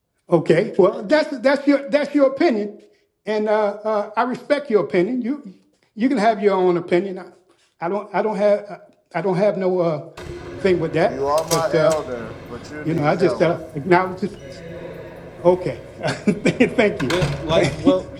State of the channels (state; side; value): identical; both; correlation 1.00